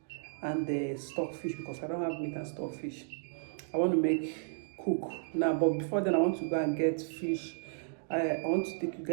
and stockfish because I don't have meat and stockfish. I want to cook now, but before then I want to go and get fish. I want to take you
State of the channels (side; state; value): left; silent; digital silence